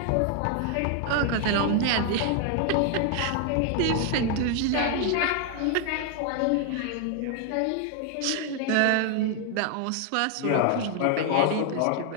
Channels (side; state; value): both; different; correlation 0.00